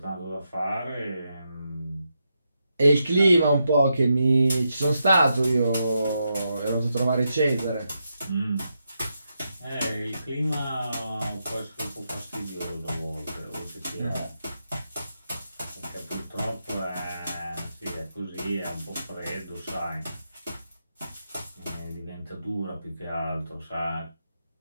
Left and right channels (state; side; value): inverted; both; correlation -0.84